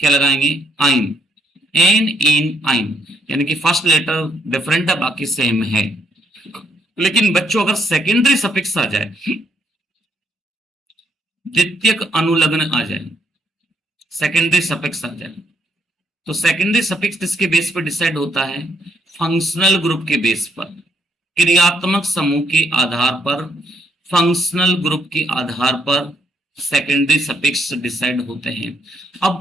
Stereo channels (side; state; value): both; normal; correlation 0.72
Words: आइन। एन इन आइन, यानी कि फर्स्ट लेटर डिफरेंट है, बाकी सेम है। लेकिन बच्चों अगर सेकेंडरी सफिक्स आ जाए, द्वितीयक अनुलग्न आ जाए, सेकेंडरी सफिक्स आ जाए, तो सेकेंडरी सफिक्स किसके बेस पर डिसाइड होता है, फंक्शनल ग्रुप के बेस पर, क्रियात्मक समूह के आधार पर, फंक्शनल ग्रुप के आधार पर सेकेंडरी सफिक्स डिसाइड होते हैं।